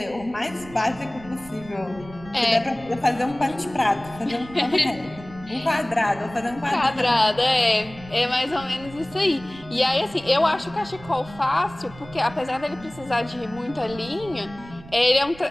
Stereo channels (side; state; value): right; noise; rumble, 18 dB below the sound